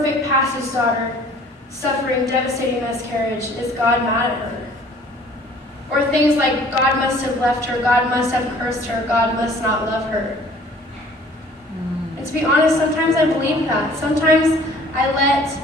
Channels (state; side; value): normal; both; correlation 0.53